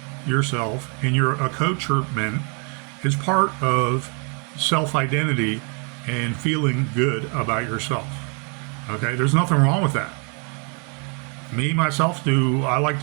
yourself in your accoutrement is part of self-identity and feeling good about yourself. Okay, there's nothing wrong with that. Me, myself, do I like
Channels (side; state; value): left; quieter; 37.0 dB